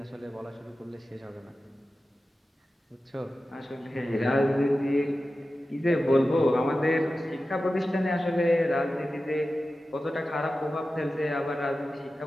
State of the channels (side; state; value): both; normal; correlation 0.94